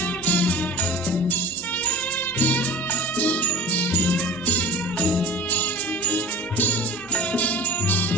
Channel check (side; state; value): both; normal; correlation 0.36